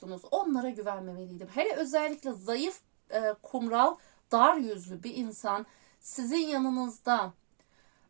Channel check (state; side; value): silent; left; digital silence